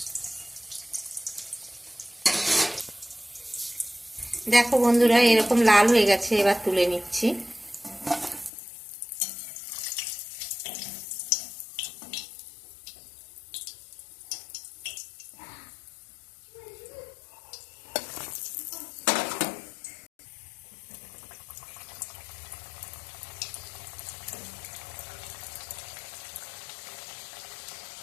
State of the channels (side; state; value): right; drops out; at 8.5 s